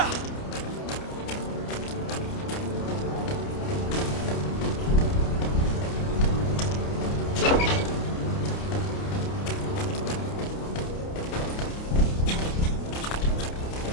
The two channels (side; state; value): right; late; 29 ms